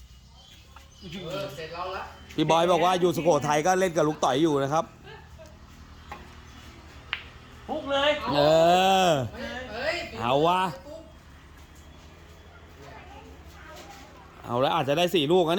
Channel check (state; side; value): identical; both; correlation 1.00